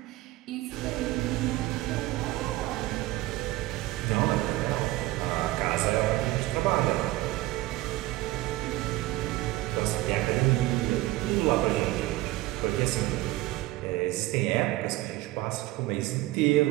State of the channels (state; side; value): quieter; left; 18.0 dB